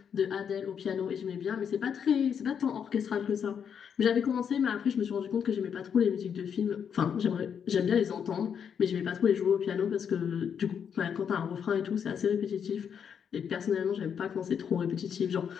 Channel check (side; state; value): right; quieter; 7.6 dB